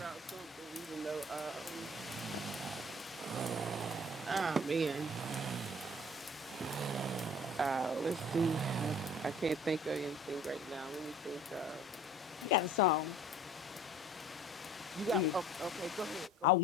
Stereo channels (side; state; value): both; normal; correlation 0.49